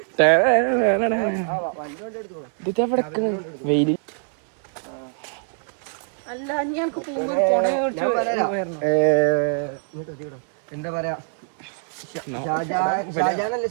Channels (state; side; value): silent; left; 63 dB below the other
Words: വെയില്. അല്ല എന്താ പറയാ, ഷാജാനല്ലേ